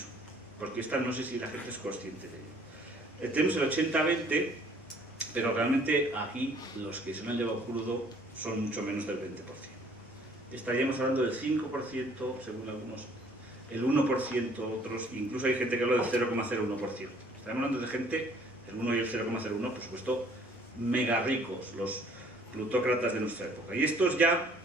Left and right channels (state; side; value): normal; both; correlation 0.58